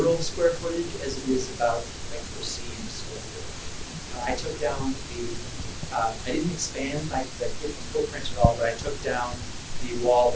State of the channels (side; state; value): both; identical; correlation 1.00